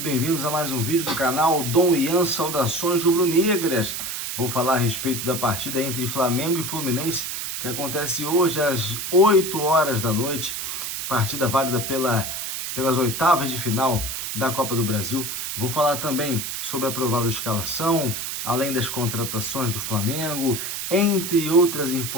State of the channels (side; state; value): right; noise; hiss, 4 dB below the sound